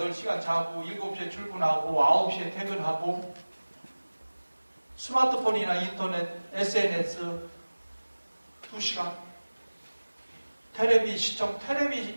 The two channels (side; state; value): both; inverted; correlation -1.00